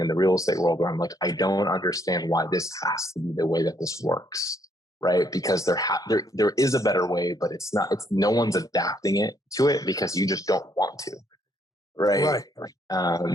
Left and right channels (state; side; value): normal; both; correlation 0.70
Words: the real estate world where I'm like, I don't understand why this has to be the way that this works, right? Because there is a better way, but it's not. It's no one's adapting it to it because you just don't want to, right?